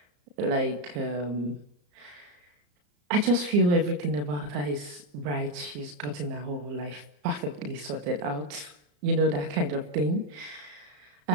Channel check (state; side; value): late; left; 34 ms